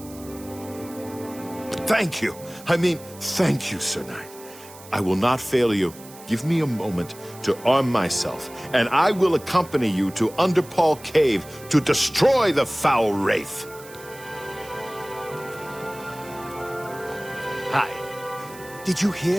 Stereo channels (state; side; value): noise; right; hiss, 19 dB below the sound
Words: Thank you. Thank you, Sir Knight. I will not fail you. Give me a moment to arm myself, and I will accompany you to Underpall Cave to destroy the foul wraith. Hi. Did you